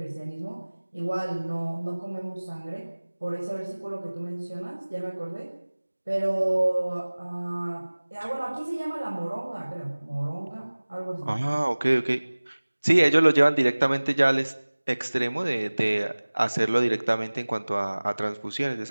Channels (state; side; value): inverted; both; correlation -1.00